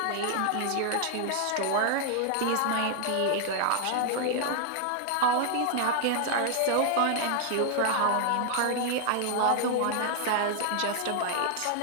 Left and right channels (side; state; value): both; different; correlation 0.00